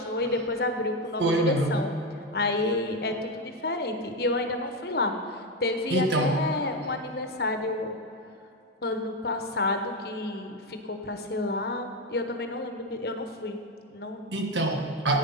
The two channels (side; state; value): both; normal; correlation 0.11